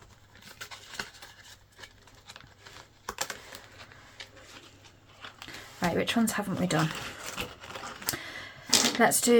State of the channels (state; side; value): identical; both; correlation 1.00